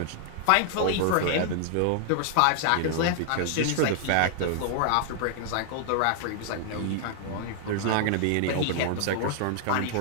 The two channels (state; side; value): different; both; correlation 0.00